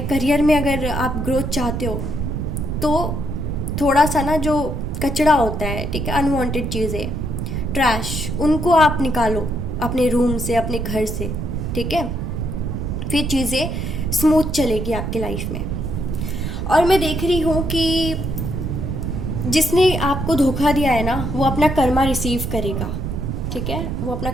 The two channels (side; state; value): right; noise; rumble, 3 dB below the sound